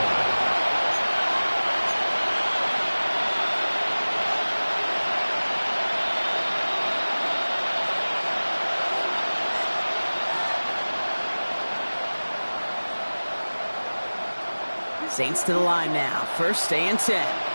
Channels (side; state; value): both; inverted; correlation -1.00